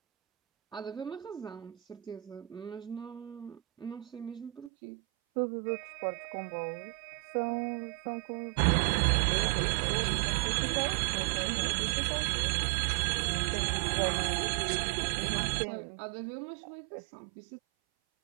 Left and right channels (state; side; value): drops out; left; at 4.7 s